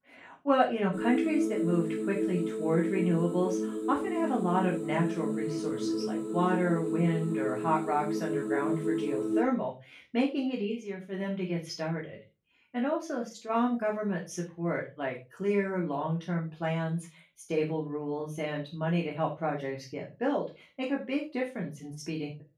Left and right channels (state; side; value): identical; both; correlation 1.00